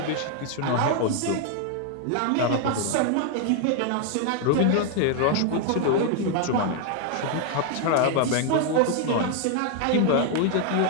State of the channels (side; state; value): both; different; correlation 0.00